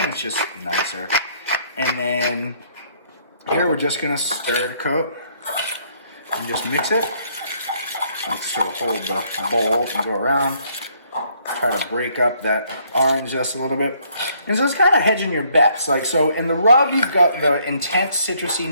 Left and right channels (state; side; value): inverted; both; correlation -0.66